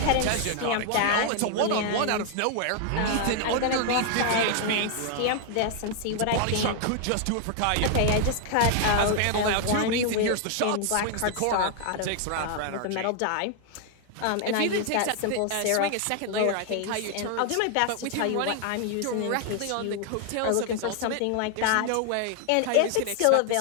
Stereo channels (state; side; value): different; both; correlation 0.00